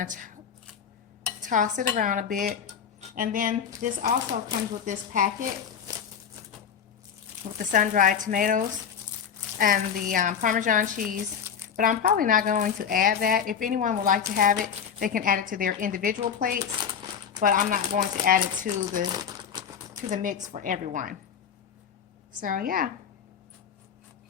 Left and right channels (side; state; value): right; quieter; 7.6 dB